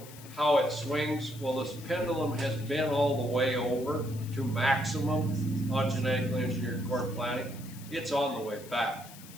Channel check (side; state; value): left; noise; hiss, 18 dB below the sound